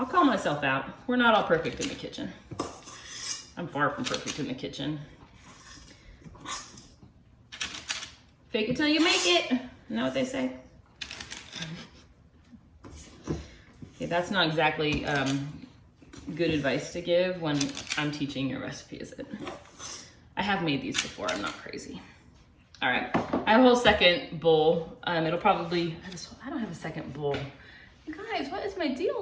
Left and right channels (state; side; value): identical; both; correlation 1.00